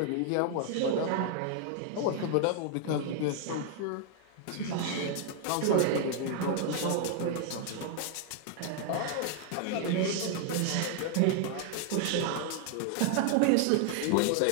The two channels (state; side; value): different; both; correlation 0.00